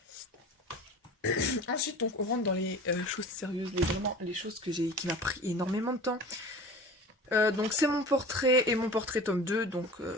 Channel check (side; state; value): both; normal; correlation 0.38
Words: Ensuite, donc, on rentre dans les choses sérieuses, vraiment les choses qui m'a pris énormément de temps. Donc c'est mon portrait et mon portrait tome 2. Donc